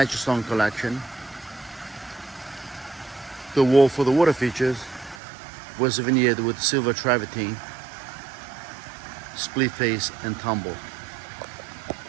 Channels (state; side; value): drops out; left; at 5.2 s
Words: stone collection. The wall for the water features was veneered with silver travertine, split face and tumble.